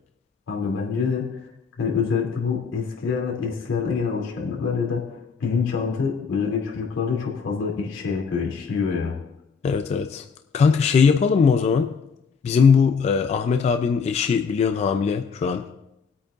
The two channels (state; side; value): quieter; right; 5.6 dB